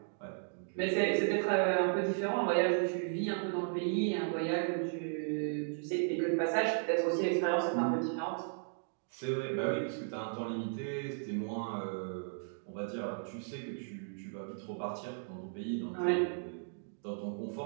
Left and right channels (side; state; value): left; silent; digital silence